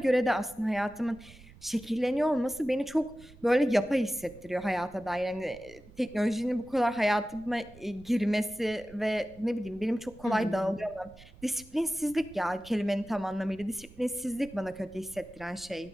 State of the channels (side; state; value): right; noise; rumble, 22 dB below the sound